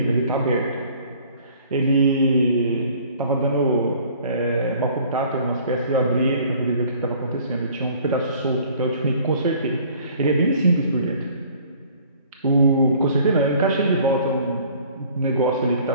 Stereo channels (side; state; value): both; inverted; correlation -0.54